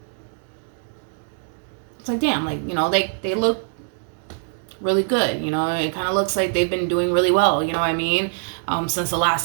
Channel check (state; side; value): silent; left; 63 dB below the other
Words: It's like, damn, like, they look really good. It kind of looks like they've been doing really well. You know what I mean? Since the